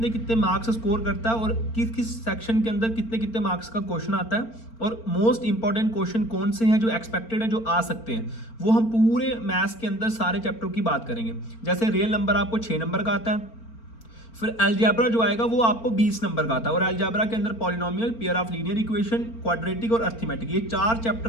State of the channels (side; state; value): right; late; 4.4 ms